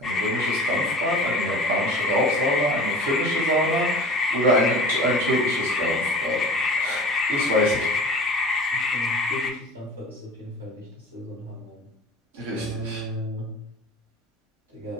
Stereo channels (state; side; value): normal; both; correlation 0.39